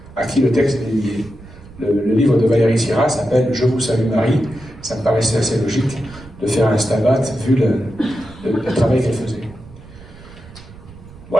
à qui le texte est lié. Le livre de Valéry Sierra s'appelle « Je vous salue Marie ». Ça me paraissait assez logique de faire un stabat vu le travail qu'elle faisait.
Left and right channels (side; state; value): right; noise; rumble, 19 dB below the sound